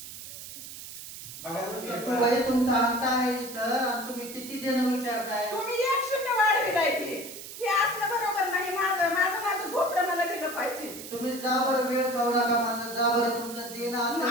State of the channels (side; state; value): right; noise; hiss, 12 dB below the sound